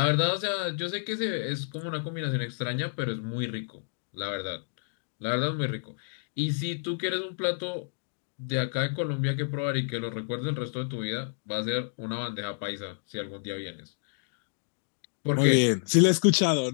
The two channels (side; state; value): right; silent; digital silence